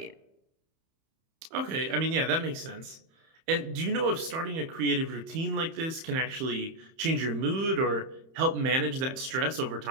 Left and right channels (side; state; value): left; late; 31 ms